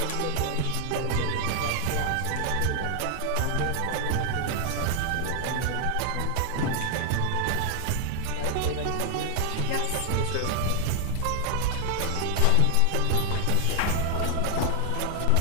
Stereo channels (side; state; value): both; different; correlation 0.00